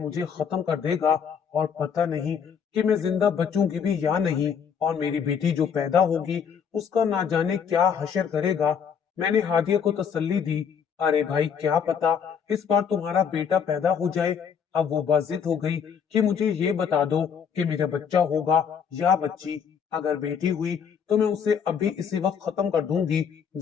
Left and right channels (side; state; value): right; quieter; 7.2 dB